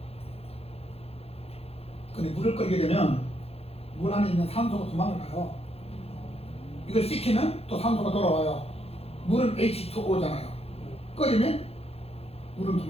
근데 물을 끓이게 되면 물 안에 있는 산소가 도망을 가요. 이걸 식히면 또 산소가 돌아와요. 물은 H2O잖아요. 끓이면 물은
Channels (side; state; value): right; late; 0.29 ms